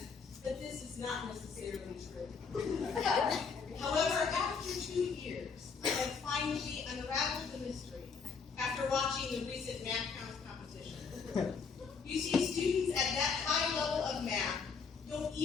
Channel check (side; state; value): right; quieter; 5.5 dB